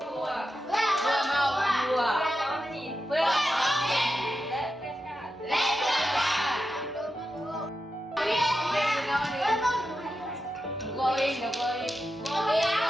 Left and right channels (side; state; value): both; normal; correlation 0.90